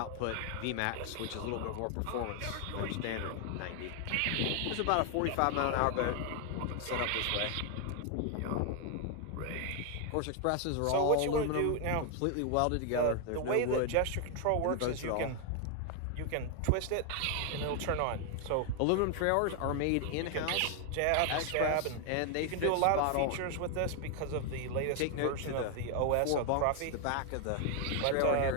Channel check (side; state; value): both; different; correlation 0.00